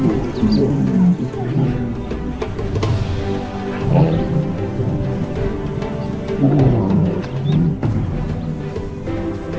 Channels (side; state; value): both; identical; correlation 1.00